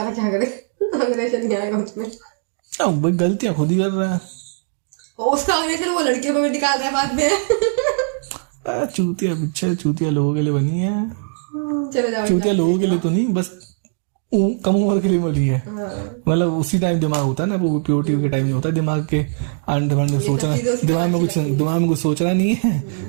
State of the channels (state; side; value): silent; left; digital silence